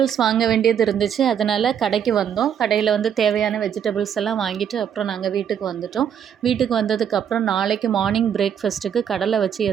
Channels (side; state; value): left; quieter; 8.6 dB